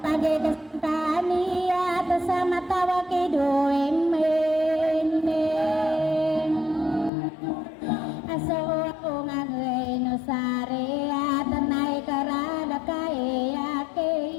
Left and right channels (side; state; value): right; drops out; at 7.1 s